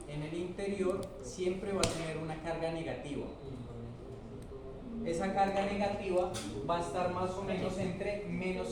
en el interior siempre va a tener una carga negativa. Esa carga negativa va a estar más o menos entre menos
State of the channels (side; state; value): both; identical; correlation 1.00